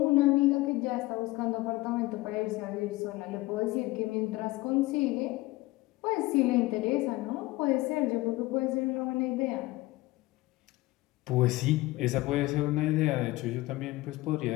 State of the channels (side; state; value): right; quieter; 19.5 dB